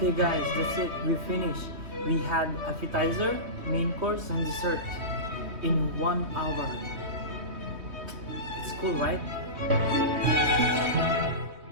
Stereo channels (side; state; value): left; late; 3.2 ms